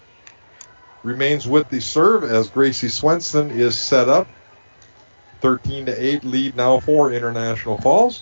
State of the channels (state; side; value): inverted; both; correlation -1.00